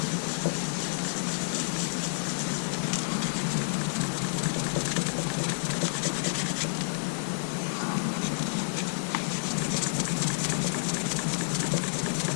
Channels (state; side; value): silent; right; digital silence